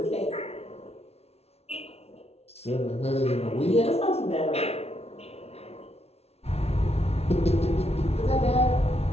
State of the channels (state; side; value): late; right; 0.30 ms